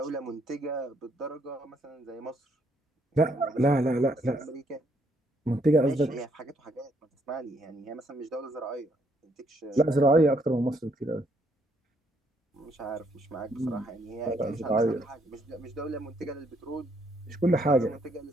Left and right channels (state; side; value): normal; both; correlation 0.70